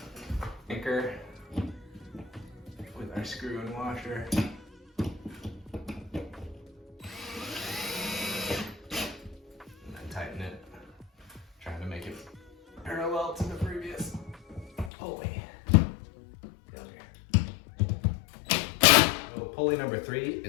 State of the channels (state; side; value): drops out; right; at 14.9 s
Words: anchor with our screw and washer. Tighten it, trying to make it parallel to the previous pulley. Down here. So pulley number 3